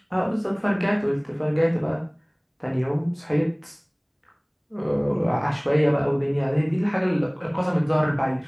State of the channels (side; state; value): both; identical; correlation 1.00